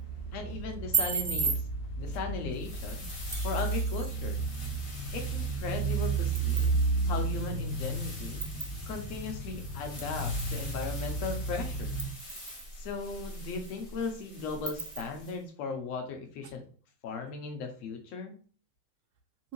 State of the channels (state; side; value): late; right; 3.8 ms